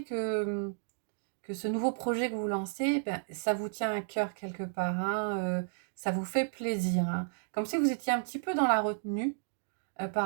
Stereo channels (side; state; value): left; silent; digital silence